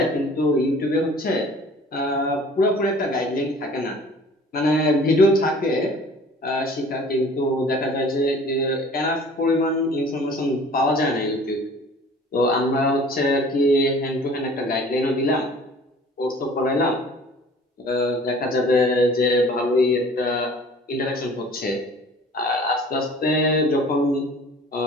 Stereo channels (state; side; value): normal; both; correlation 0.48